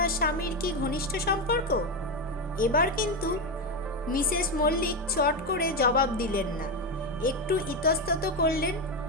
স্বামীর কি ঘনিষ্ঠ সম্পর্ক? এবার কিন্তু মিসেস মল্লিক চট করে জবাব দিলেন না, একটু ইতস্তত করলেন।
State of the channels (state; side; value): normal; both; correlation 0.11